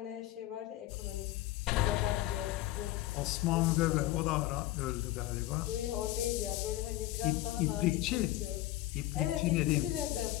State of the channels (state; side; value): quieter; right; 15.8 dB